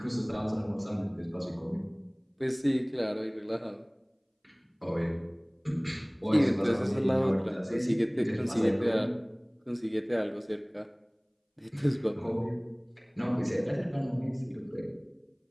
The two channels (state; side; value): identical; both; correlation 1.00